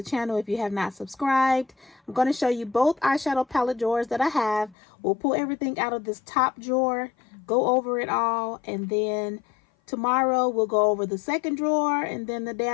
channel if you have not subscribed. I'm going to show you both eyeshadow palette drawers that I have. We'll pull everything out of this top drawer, go over it all, and then tomorrow we'll go over the second drawer, and then the day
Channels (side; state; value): right; drops out; at 4.8 s